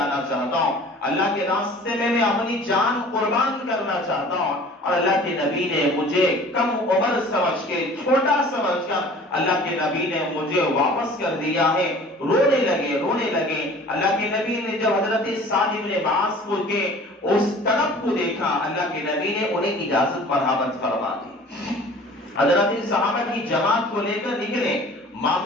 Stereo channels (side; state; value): both; normal; correlation 0.46